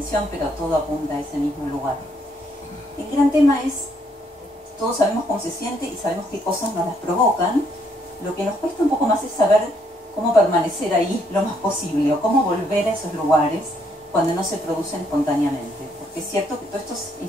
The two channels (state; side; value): normal; both; correlation 0.70